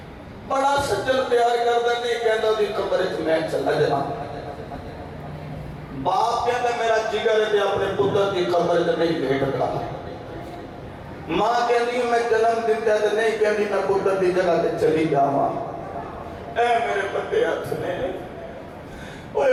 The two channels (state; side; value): identical; both; correlation 1.00